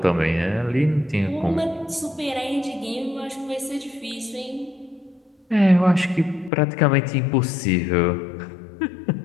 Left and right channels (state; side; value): drops out; right; at 6.5 s